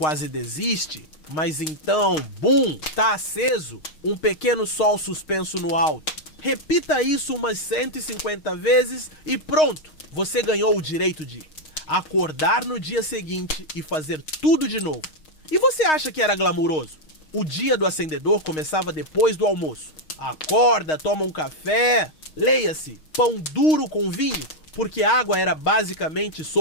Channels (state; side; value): late; right; 6.4 ms